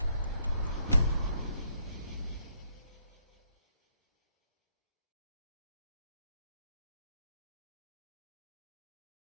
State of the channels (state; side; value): inverted; both; correlation -0.73